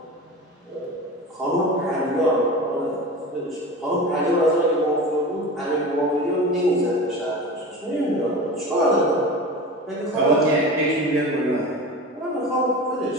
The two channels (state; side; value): normal; both; correlation 0.31